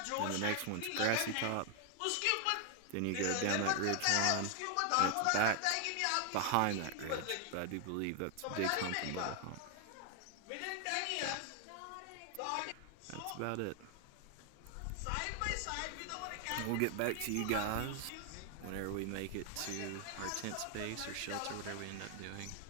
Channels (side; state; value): both; different; correlation 0.00